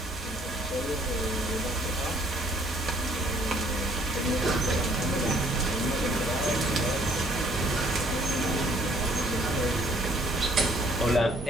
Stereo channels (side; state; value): both; normal; correlation 0.62